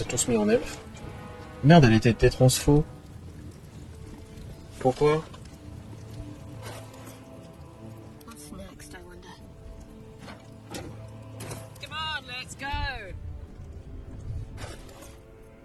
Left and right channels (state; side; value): identical; both; correlation 1.00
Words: tous mis en elfe. Merde, elle était transfo. Pourquoi? What's next, I wonder? Come on, let's go!